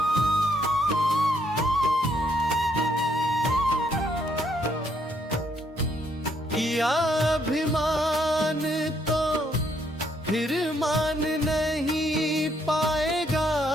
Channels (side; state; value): both; normal; correlation 0.71